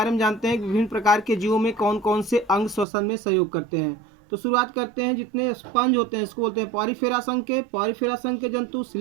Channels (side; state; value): left; drops out; at 2.9 s